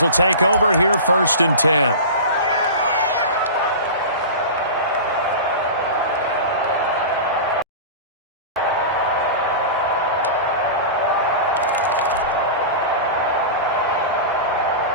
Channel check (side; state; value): both; inverted; correlation -0.30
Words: will take over here first and 10.